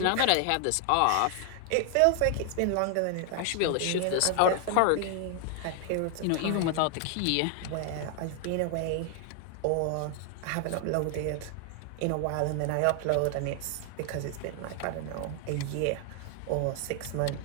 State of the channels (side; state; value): both; different; correlation 0.00